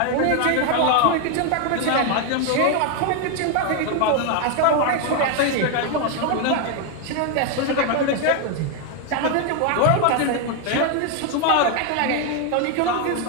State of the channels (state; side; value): different; both; correlation 0.01